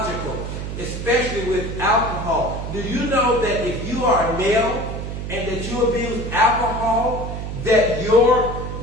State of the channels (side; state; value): right; noise; hum, 6 dB below the sound